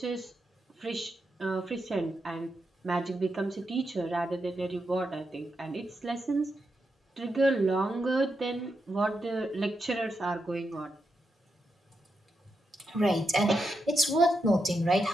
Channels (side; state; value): both; normal; correlation 0.85